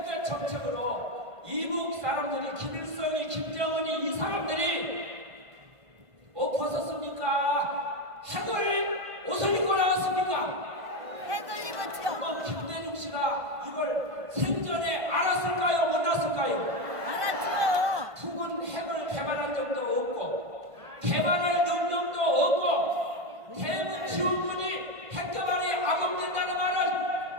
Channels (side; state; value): left; late; 1.5 ms